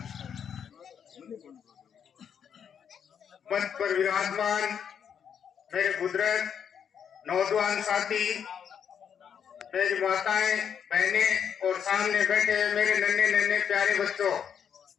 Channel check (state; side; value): quieter; right; 7.9 dB